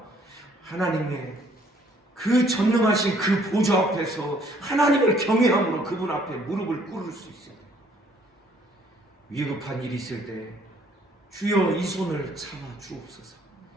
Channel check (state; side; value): normal; both; correlation 0.62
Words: 하나님의 그 전능하신 그 보좌 앞에서 하나님을 경외함으로 그분 앞에 무릎을 꿇을 수 있어요. 위급한 일이 있을 때 주여 이 손을 잡아 주옵소서.